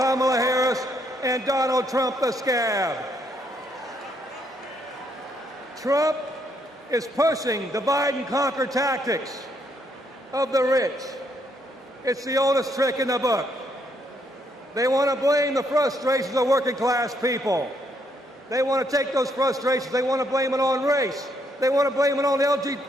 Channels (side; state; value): both; normal; correlation 0.73